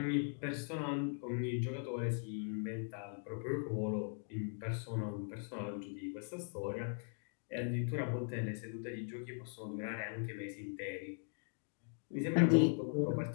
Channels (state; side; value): silent; right; 51 dB below the other